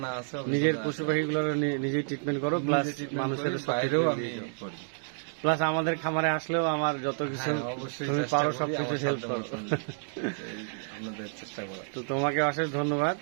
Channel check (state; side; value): silent; left; digital silence